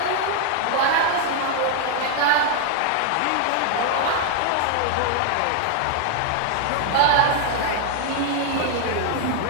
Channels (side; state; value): both; different; correlation 0.00